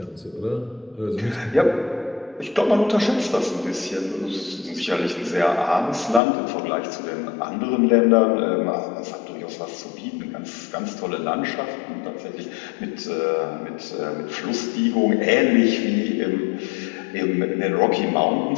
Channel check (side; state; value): right; drops out; at 6.2 s